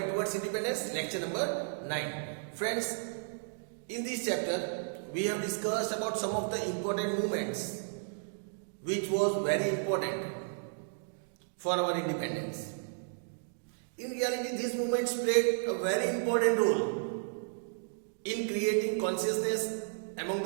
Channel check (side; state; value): left; silent; digital silence